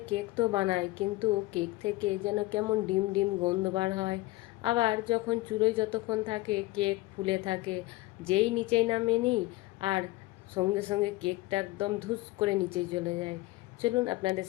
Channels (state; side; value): quieter; right; 19.8 dB